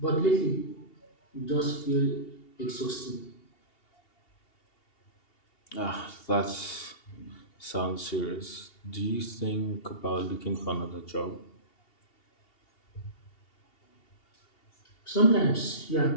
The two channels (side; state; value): right; late; 2.8 ms